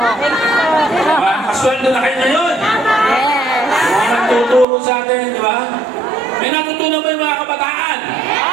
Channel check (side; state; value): left; drops out; at 4.7 s